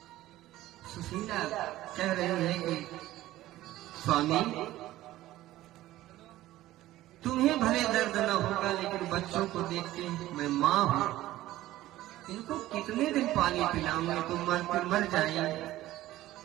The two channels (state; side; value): quieter; left; 15.5 dB